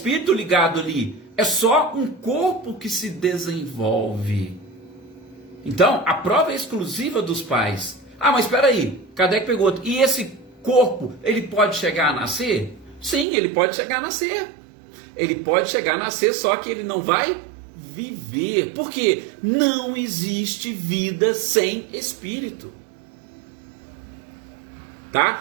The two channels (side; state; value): left; drops out; at 13.2 s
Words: ligado ali, é só um corpo que se desenvolve. Então, a prova é exclusiva dos pais. Ah, mas espera aí, Kardec pergunta, e esse corpo, ele pode chegar a nascer? Sim, ele pode chegar a nascer. Ele pode chegar a nascer, só que ele não vai viver. Porque não existe vida sem espírito.